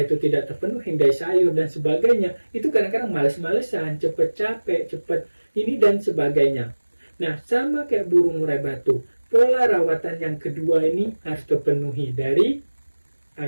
itu tidak terpenuhi, dari sayur dan sebagainya, itu kadang-kadang males-malesan, cepet capek, cepet ini dan sebagainya. Nah, sama kayak burung murai batu, pola rawatan yang kedua ini harus terpenuhi dari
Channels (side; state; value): both; inverted; correlation -1.00